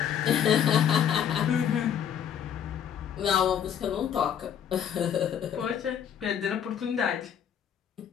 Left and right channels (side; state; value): right; quieter; 8.9 dB